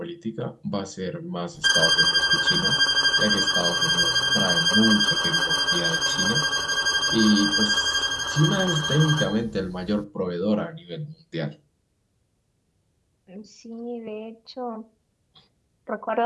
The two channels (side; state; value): both; identical; correlation 1.00